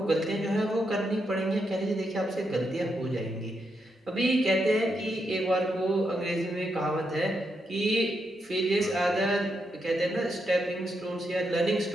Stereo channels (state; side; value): normal; both; correlation 0.82